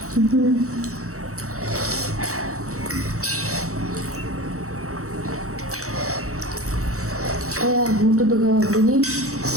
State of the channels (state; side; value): late; left; 0.64 ms